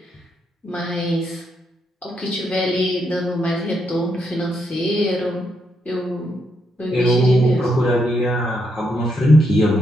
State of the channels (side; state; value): both; normal; correlation 0.78